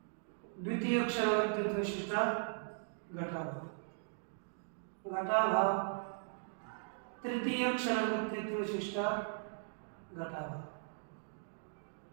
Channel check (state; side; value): silent; left; digital silence